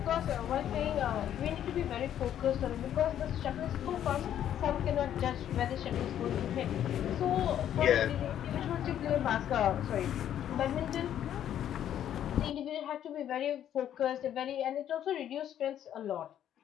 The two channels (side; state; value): right; quieter; 10.5 dB